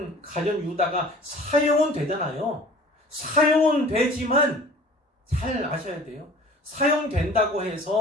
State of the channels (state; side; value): normal; both; correlation 0.45